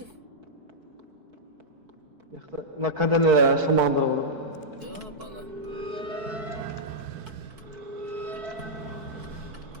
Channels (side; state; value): left; late; 4.6 ms